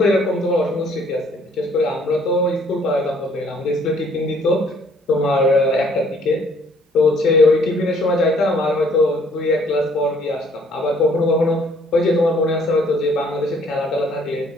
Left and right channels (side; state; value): both; normal; correlation 0.62